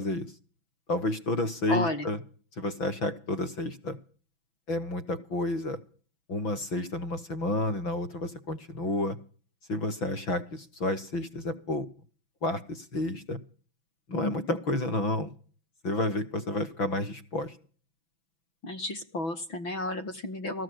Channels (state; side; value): late; right; 6.0 ms